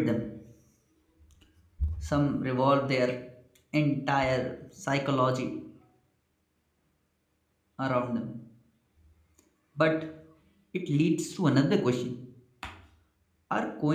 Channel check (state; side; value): identical; both; correlation 1.00